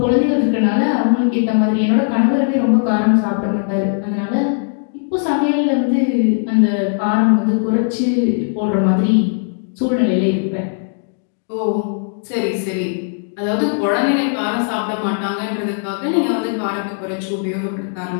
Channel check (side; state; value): right; silent; digital silence